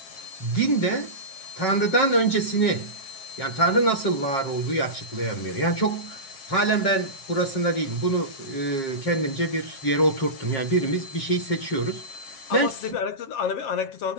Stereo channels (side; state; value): right; late; 7.5 ms